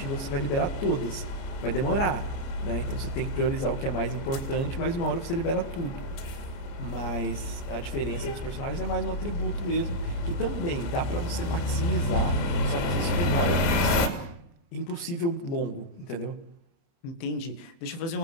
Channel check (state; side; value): late; right; 30 ms